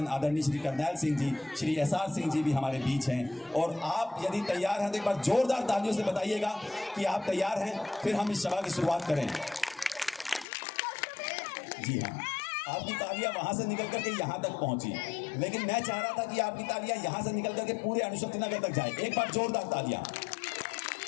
आदरणीय श्री करनैल सिंह जी, श्री SR सिंह जी भी हमारे बीच हैं, और आप यदि तैयार हैं तो एक बार जोरदार तालियों से बताइएगा कि आप तैयार हैं, फिर हम इस सभा की शुरुआत करें। जी हाँ, आपकी तालियां वहां से निकल करके यहाँ तक पहुंची, लेकिन मैं चाह रहा था कि आपकी तालियां यहाँ से निकल करके पूरे अणुशक्ति नगर तक जाए। एक बार जोरदार तालियां।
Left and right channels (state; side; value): drops out; right; at 10.5 s